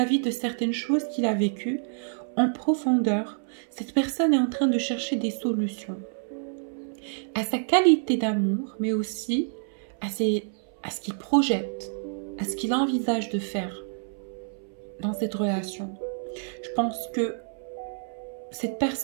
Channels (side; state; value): left; silent; 60 dB below the other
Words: de certaines choses qu'il a vécues, en profondeur, cette personne est en train de chercher des solutions à sa qualité d'amour, mais aussi à ce qu'il projette, à ce qu'il envisage de faire dans cette relation. Je pense que cette